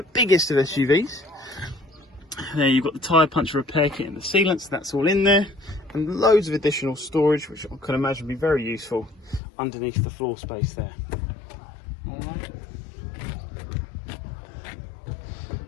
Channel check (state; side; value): drops out; right; at 9.4 s